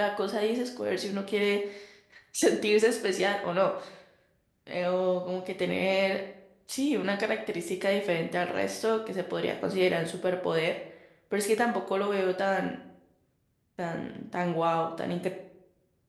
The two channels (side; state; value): both; identical; correlation 1.00